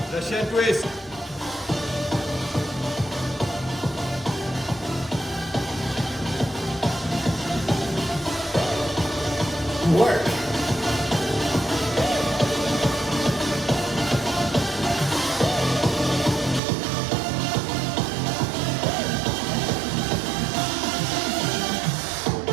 Russian twist. Work.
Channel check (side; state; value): left; drops out; at 16.6 s